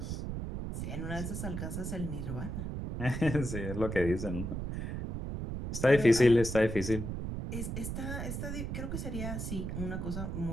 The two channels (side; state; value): right; noise; rumble, 4 dB below the sound